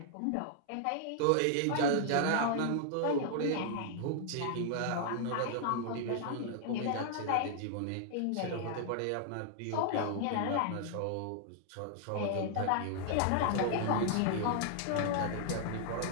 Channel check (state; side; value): different; both; correlation -0.01